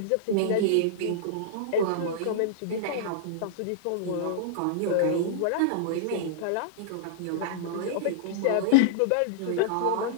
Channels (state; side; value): different; both; correlation -0.02